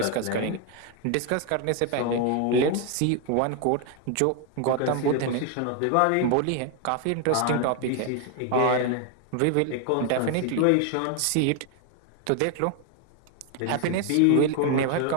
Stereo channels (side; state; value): both; different; correlation 0.01